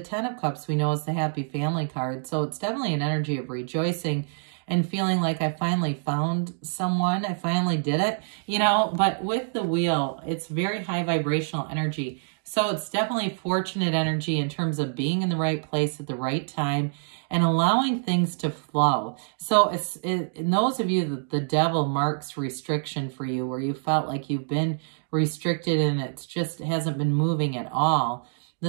Ten of Cups, we know, is the happy family card. So it's definitely an energy of rejoicing and feeling like I finally found someone. I finally did it, you know. But with the wheel, it's very high vibrational energy. So it's definitely fortunate energy in terms of being in the right place at the right time and allowing things to flow. So in those of you that the devil marks restriction for you, where you felt like you've been restricted and it hasn't been moving at all,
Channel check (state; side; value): silent; left; digital silence